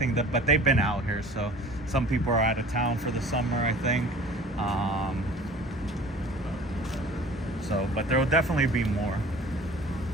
but they've been out here. So some people are out of town for the summer, I think. But there will definitely be more.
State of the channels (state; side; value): normal; both; correlation 0.45